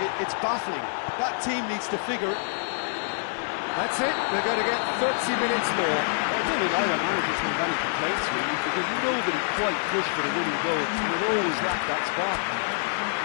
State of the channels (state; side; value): silent; right; digital silence